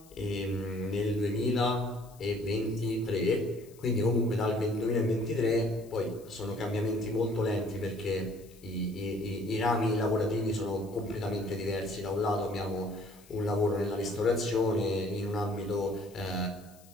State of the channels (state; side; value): noise; left; hiss, 25 dB below the sound